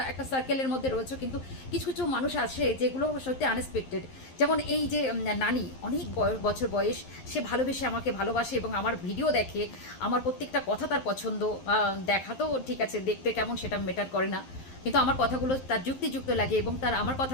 একটা সার্কেলের মধ্যে রয়েছো, কিন্তু কিছু কিছু মানুষ আছে যেগুলো সত্যি আনএক্সপেক্টেড। যেমন এই যে নানি, অনেক বছর বয়স, সে ভালোবেসে আমাকে ভালোবাসে এবং আমার ভিডিও দেখে, আমার প্রত্যেকটা কথা তার পছন্দ। দেখা তো ঠিক আছে, দেখতে কেমন সেটা ম্যাটার করে না, কিন্তু আমার কথাগুলো তার যুক্তিযুক্ত লাগে এবং তার আমার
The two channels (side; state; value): right; late; 11 ms